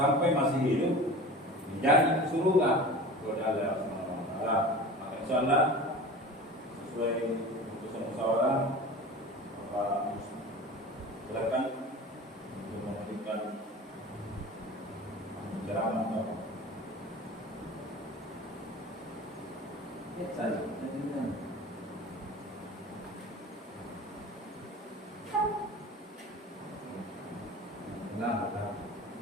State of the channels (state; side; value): normal; both; correlation 0.37